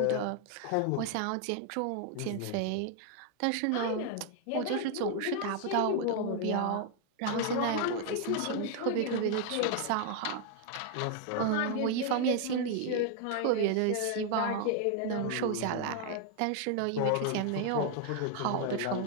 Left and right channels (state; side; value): different; both; correlation 0.00